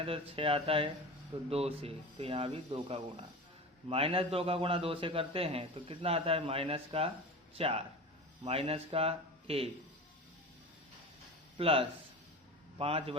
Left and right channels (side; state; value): both; normal; correlation 0.31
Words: तो 6 आता है, तो 2 से। तो यहाँ भी 2 का गुणा, -2 का गुणा 2 से करते हैं तो कितना आता है, -4 -1 प्लस